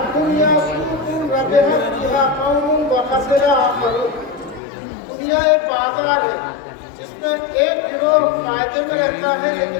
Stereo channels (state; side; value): drops out; right; at 4.6 s